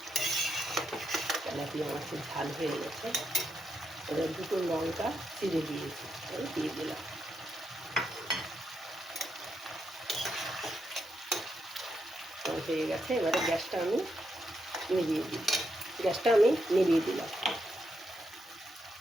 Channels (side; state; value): both; normal; correlation 0.82